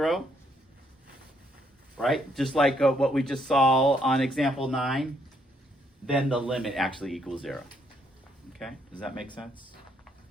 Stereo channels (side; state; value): both; normal; correlation 0.72